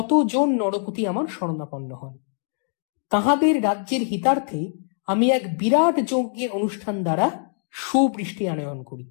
জন নরপতি আমার শরণাপন্ন হন। তাহাদের রাজ্যের হিতার্থে আমি এক বিরাট যজ্ঞের অনুষ্ঠান দ্বারা সুবৃষ্টি আনয়ন করি।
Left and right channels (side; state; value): right; silent; digital silence